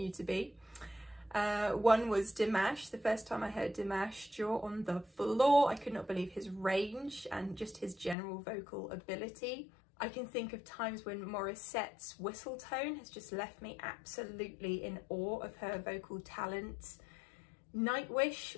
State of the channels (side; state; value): right; drops out; at 8.2 s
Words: to be. One was Dimash. The first time I heard Dimash, jaw on the floor. I could not believe his range and just his general vocal ability. I can think of times when Morissette's whistle tone has just left me absolutely in awe of her vocal talent.